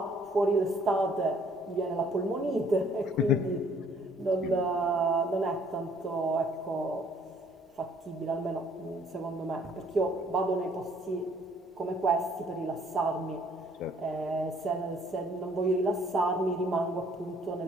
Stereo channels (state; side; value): normal; both; correlation 0.61